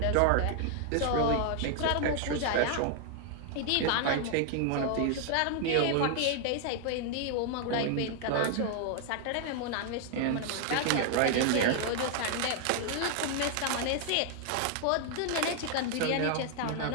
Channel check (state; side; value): different; both; correlation 0.00